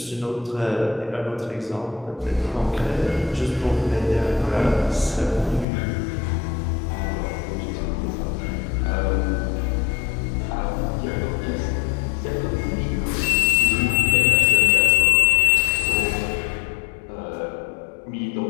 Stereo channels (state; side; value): drops out; right; at 5.7 s